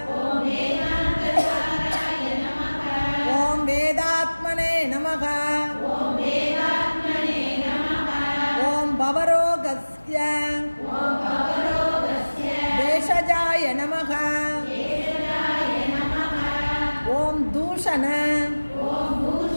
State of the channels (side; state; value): both; inverted; correlation -1.00